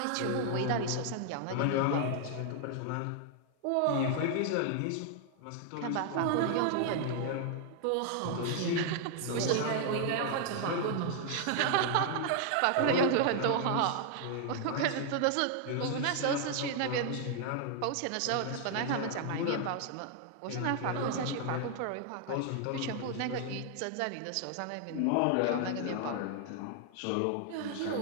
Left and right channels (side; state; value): both; different; correlation 0.00